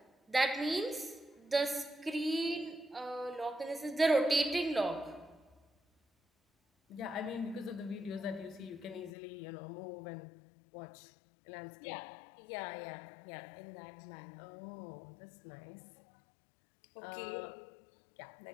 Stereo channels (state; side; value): drops out; right; at 9.1 s